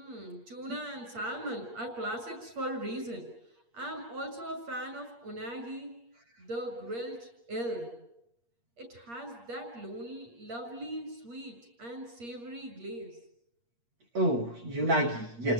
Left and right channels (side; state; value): left; late; 8.5 ms